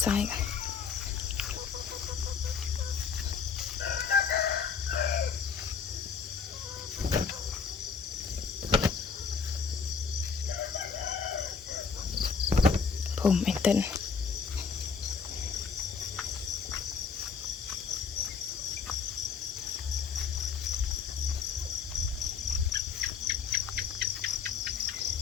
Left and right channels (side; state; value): right; quieter; 5.9 dB